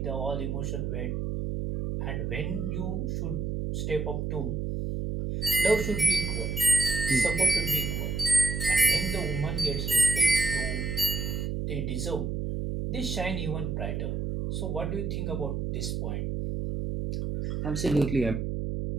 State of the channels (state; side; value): noise; right; hum, 2 dB below the sound